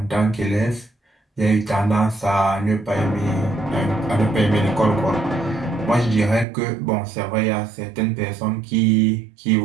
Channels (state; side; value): drops out; left; at 6.5 s